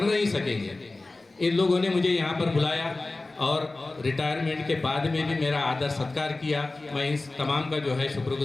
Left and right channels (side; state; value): right; quieter; 3.2 dB